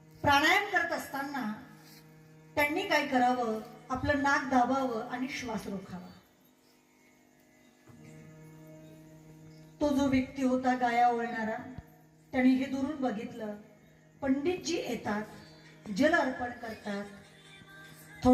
प्राणायाम करत असताना त्यांनी काय करावं? आपलं नाक दाबावं आणि श्वास रोखावा. तो जो व्यक्ती होता गाया ओळणारा, त्याने हे दुरून बघितलं. पंडितजी येतात, जल अर्पण करतात,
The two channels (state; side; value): identical; both; correlation 1.00